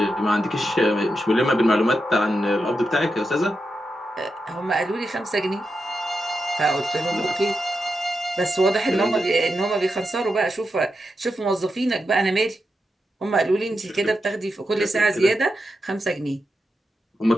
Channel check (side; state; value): both; normal; correlation 0.87